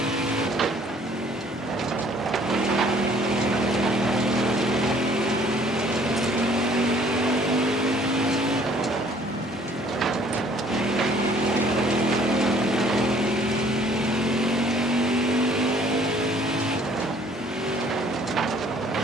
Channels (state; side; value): normal; both; correlation 0.58